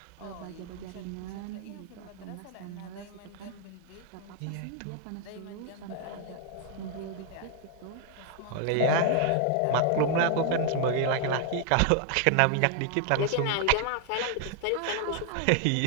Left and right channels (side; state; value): both; different; correlation 0.00